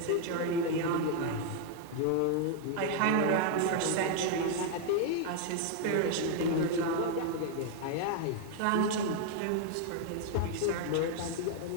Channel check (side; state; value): both; different; correlation 0.00